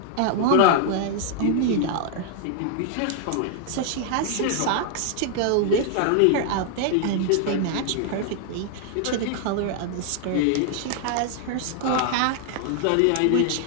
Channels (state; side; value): different; both; correlation 0.00